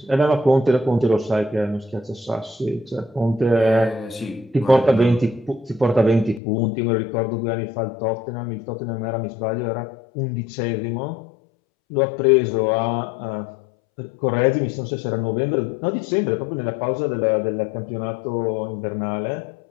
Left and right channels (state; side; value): drops out; right; at 6.4 s